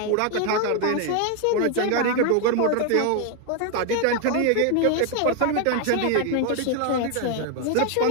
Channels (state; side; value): different; both; correlation 0.01